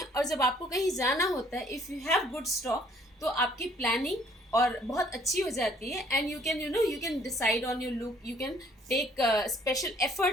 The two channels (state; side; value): normal; both; correlation 0.60